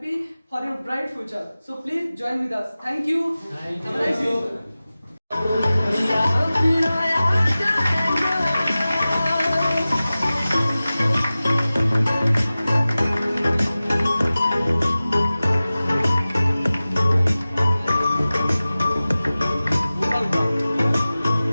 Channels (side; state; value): both; inverted; correlation -0.97